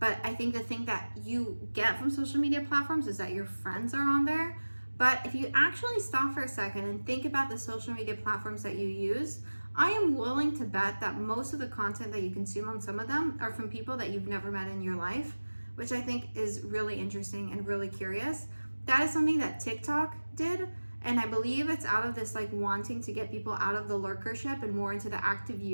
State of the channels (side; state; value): both; inverted; correlation -1.00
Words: I think the thing that you get from social media platforms is that your friends are on there. But if you actually stop for a second and think about the social media platforms that you use, I am willing to bet that most of the content that you consume on some of them are from people that you've never met in your life, which I think is really interesting and really curious. That is something that TikTok did, and I believe it's out of this like wanting to get people out of the lurkership and more into the active